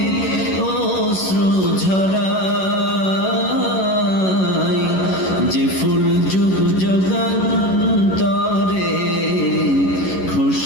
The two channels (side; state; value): right; late; 11 ms